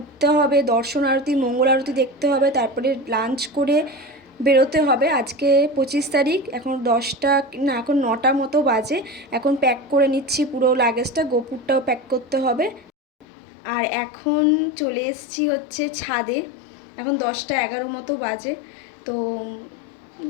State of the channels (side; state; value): right; drops out; at 13.2 s